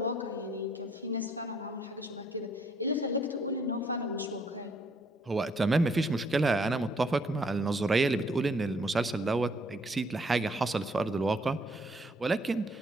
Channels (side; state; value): both; normal; correlation 0.67